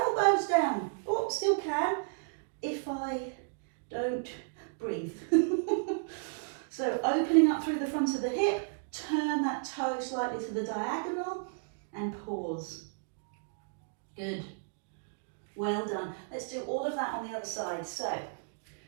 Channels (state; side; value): silent; left; digital silence